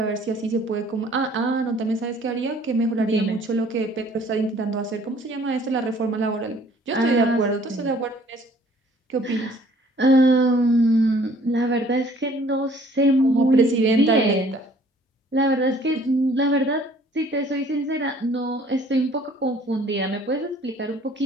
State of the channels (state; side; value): normal; both; correlation 0.56